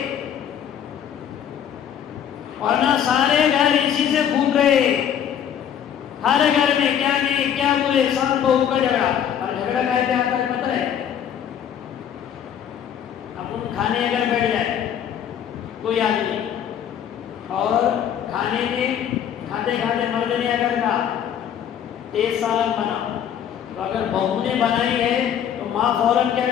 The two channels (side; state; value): right; quieter; 9.2 dB